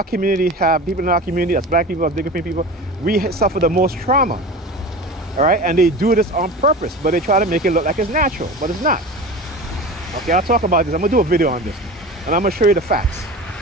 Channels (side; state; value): both; normal; correlation 0.33